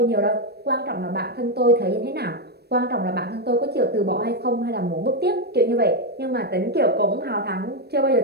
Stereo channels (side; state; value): left; late; 0.47 ms